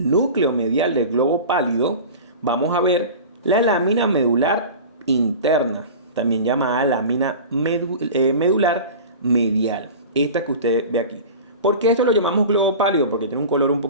núcleo medial del globo pálido vamos a ver la lámina medular interna, también llamada lámina medular medial. Esta que usted ve aquí. ¿Por qué esto lo llamamos globo pálido? Porque tiene un color un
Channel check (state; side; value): inverted; both; correlation -0.34